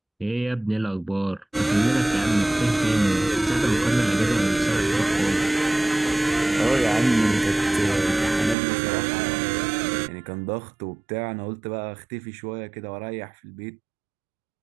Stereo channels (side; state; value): left; drops out; at 8.6 s